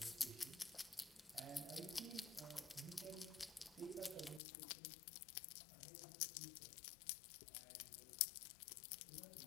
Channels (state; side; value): drops out; right; at 4.4 s